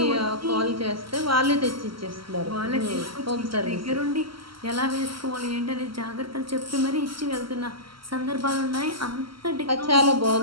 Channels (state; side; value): late; left; 0.74 ms